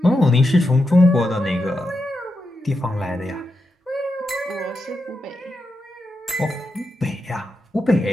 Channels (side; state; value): both; normal; correlation 0.87